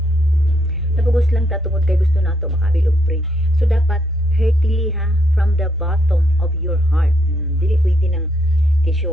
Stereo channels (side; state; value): both; normal; correlation 0.75